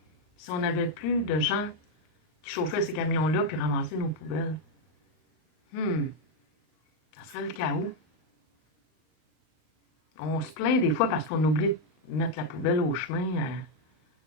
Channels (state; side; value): late; right; 39 ms